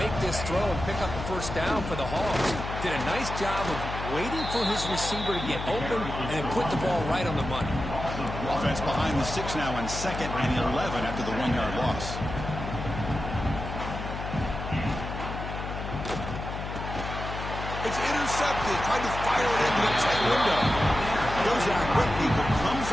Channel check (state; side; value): noise; left; hum, 7 dB below the sound